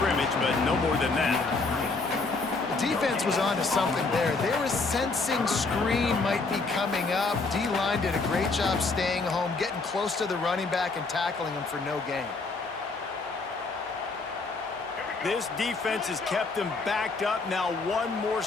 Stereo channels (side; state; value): right; quieter; 3.8 dB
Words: but no more than that. Defense was on to something there. They were sensing screen might be coming up. D-line did a great job staying home, getting close to the running back and tackling him for no gain. This defense has kept them backed up. Now one more